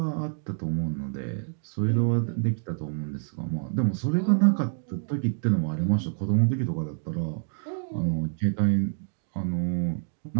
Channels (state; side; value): silent; left; digital silence